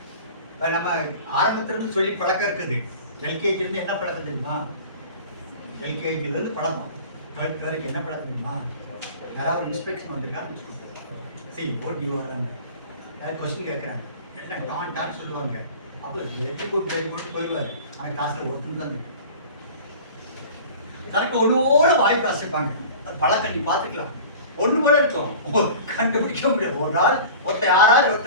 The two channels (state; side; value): inverted; both; correlation -0.40